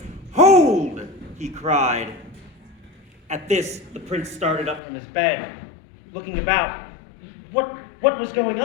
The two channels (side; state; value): right; drops out; at 4.8 s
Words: "Hold!" he cried. At this, the prince started up from his bed, looking about. What was going